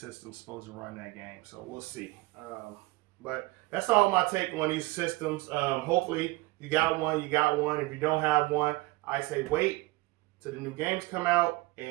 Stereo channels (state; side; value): quieter; left; 21.7 dB